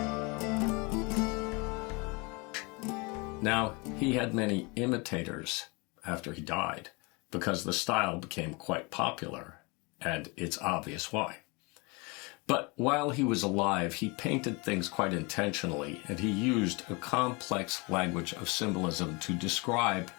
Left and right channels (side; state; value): right; quieter; 28.4 dB